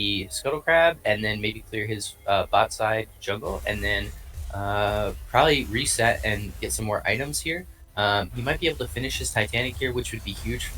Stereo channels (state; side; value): identical; both; correlation 1.00